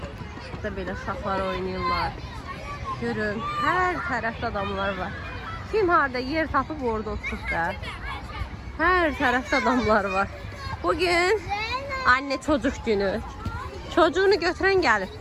Burada belə uşaqlar oynayırlar. Görün, hər tərəfdə adamlar var. Kim harada yer tapıb orada oturub da. Hər tərəfdə adamlar var. Bugün anne çocuk günü. Çocuğunu götüren gelip.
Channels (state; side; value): identical; both; correlation 1.00